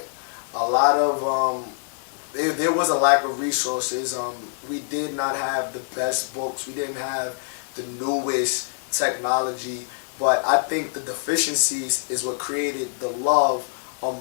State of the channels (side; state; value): right; silent; 62 dB below the other